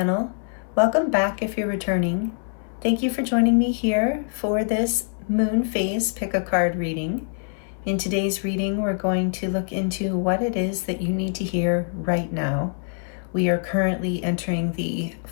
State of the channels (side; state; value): right; silent; 61 dB below the other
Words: Welcome back if you're returning. Thank you for joining me here for this moon phase pick a card reading. In today's reading, we're going to look into what it is that you need to hear right now. We are currently entering the